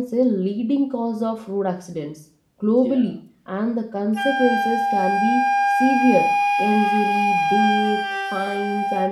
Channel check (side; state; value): both; identical; correlation 1.00